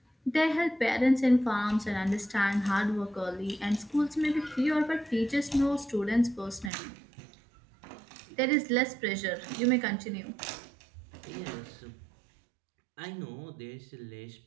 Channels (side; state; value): left; drops out; at 6.7 s